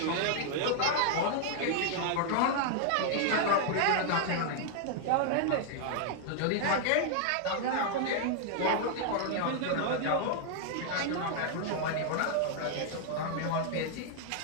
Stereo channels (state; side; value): different; both; correlation 0.00